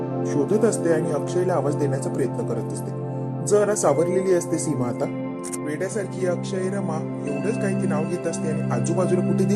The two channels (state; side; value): identical; both; correlation 1.00